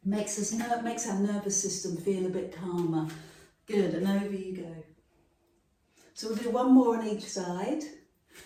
Makes our nervous system feel a bit calmer. Good, and over you go. So we'll do one more on each side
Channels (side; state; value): both; identical; correlation 1.00